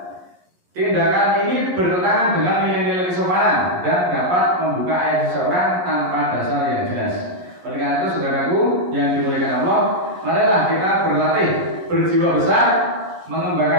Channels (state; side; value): late; left; 11 ms